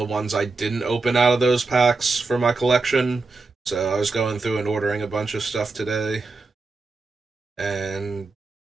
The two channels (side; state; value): left; quieter; 3.8 dB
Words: ones I didn't open out of those packs for my collection. So I was going through and ordering a bunch of stuff today. And